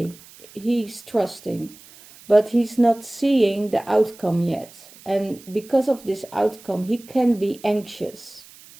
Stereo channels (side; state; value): right; noise; hiss, 22 dB below the sound